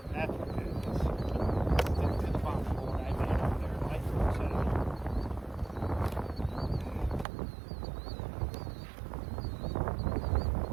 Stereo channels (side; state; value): left; drops out; at 7.2 s